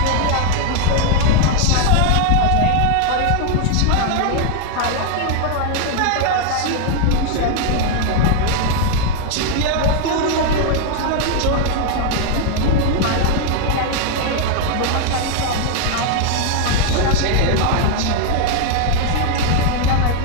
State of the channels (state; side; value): different; both; correlation 0.00